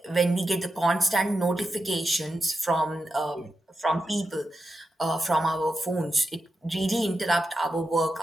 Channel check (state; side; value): normal; both; correlation 0.88